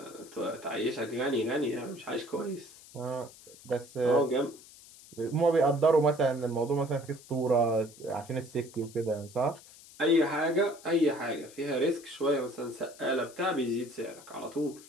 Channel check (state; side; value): noise; left; hiss, 21 dB below the sound